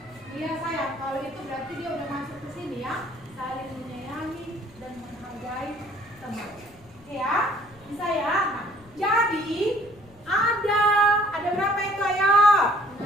Iya sayang, kalau itu berarti dia udah masuk ke sini ya. Saling menyayangi dan menghargai teman. Oke ya, bisa ya. Nah, jadi ada berapa itu ayo?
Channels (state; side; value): noise; left; rumble, 28 dB below the sound